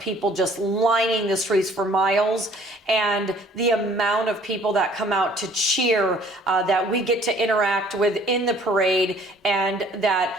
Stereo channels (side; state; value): both; normal; correlation 0.56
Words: just lining the streets for miles, and the amount of people that come out to cheer, that we get to interact with in the parade and that